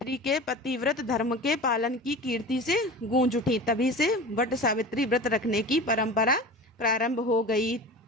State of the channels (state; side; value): normal; both; correlation 0.34